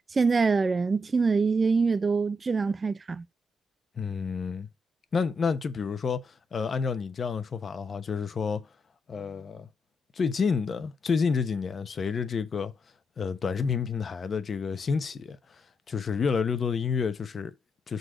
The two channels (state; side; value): normal; both; correlation 0.81